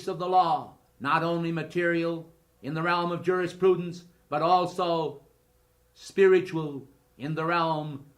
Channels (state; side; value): identical; both; correlation 1.00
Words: of the law, not only material in the realm of jurisprudence, but also spiritual in the realm